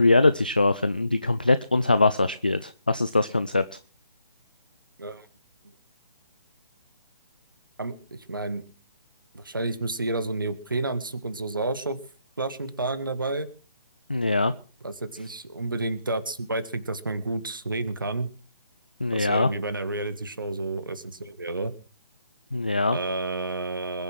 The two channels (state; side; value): inverted; both; correlation -0.78